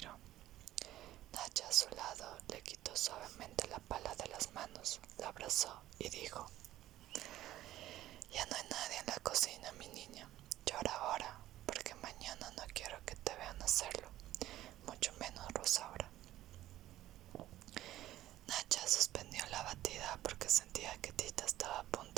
Nacha a su lado le quitó suavemente la pala de las manos, la abrazó y dijo: Ya no hay nadie en la cocina, mi niña. Llora ahora, porque mañana no quiero que te vean hacerlo, mucho menos Rosaura. Nacha suspendió la batida porque sentía que Tita estaba a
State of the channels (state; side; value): quieter; left; 14.3 dB